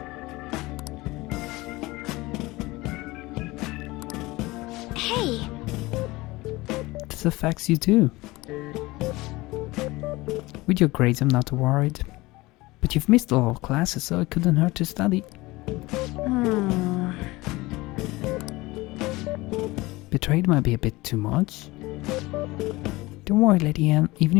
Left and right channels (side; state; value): right; quieter; 20.9 dB